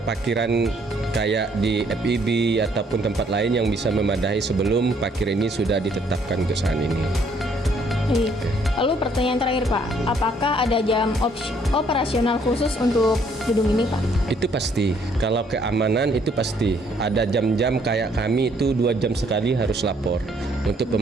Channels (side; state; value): both; normal; correlation 0.66